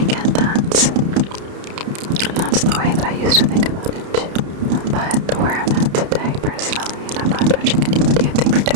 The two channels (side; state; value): left; late; 31 ms